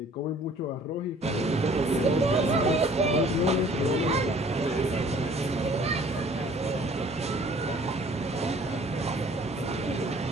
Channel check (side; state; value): both; normal; correlation 0.54